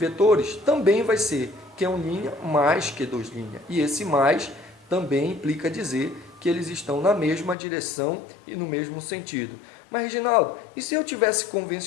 também vai ser Q1' mais Q2'. E esse mais também implica dizer que eles estão na mesma direção e no mesmo sentido. Mas, Reginaldo, e se eu tivesse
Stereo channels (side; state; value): right; drops out; at 7.6 s